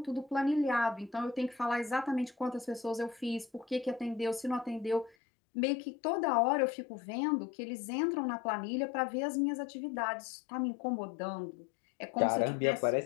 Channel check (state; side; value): drops out; right; at 5.2 s